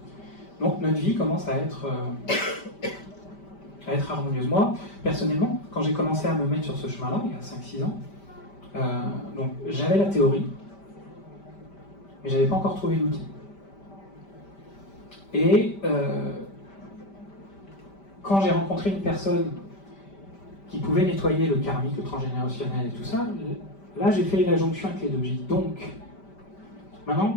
Donc notre vie commence à être harmonieuse. Moi, personnellement, quand j'ai commencé à me mettre sur ce chemin-là, il y a 5-6 ans, donc j'avais la théorie, mais j'avais pas encore trouvé l'outil. Et quand j'ai rencontré une personne qui pouvait nettoyer le karmique, le transgénérationnel et tout ça, là j'ai fait la jonction avec les deux. J'ai dit donc,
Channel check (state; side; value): late; right; 5.1 ms